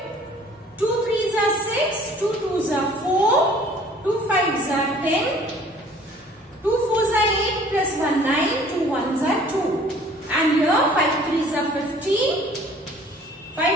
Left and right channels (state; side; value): normal; both; correlation 0.53